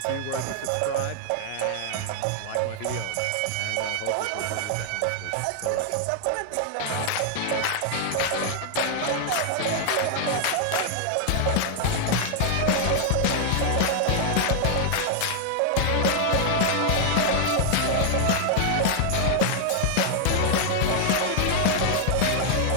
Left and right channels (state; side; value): different; both; correlation -0.01